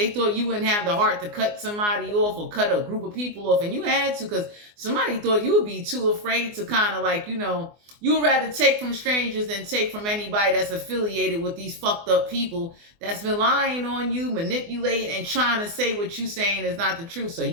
thought you wouldn't have the heart to cut somebody off or cut a group of people off. And you had to, because somebody thought you would be too afraid to kind of like, you know, you would rather take from strangers than take from anybody that's affiliated with these fucked up people that's been lying on you, manipulating, and trying to say what you saying is not the truth. So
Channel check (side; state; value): left; late; 24 ms